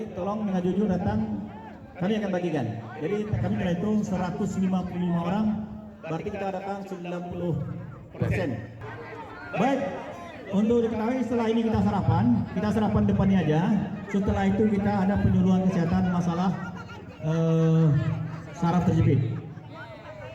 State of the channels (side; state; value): both; identical; correlation 1.00